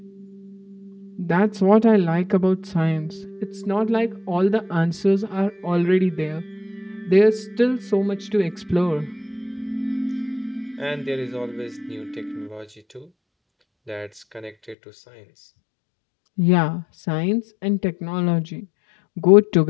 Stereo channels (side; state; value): right; drops out; at 14.8 s